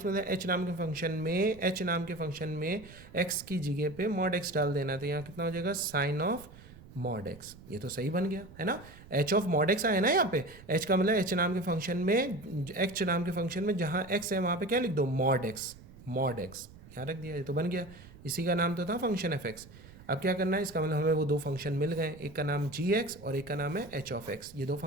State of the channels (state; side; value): noise; right; rumble, 19 dB below the sound